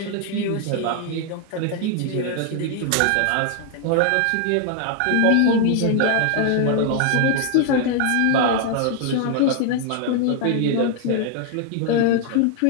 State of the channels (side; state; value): both; different; correlation 0.00